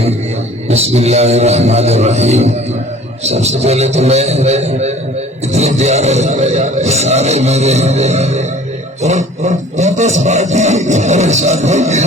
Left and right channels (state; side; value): normal; both; correlation 0.49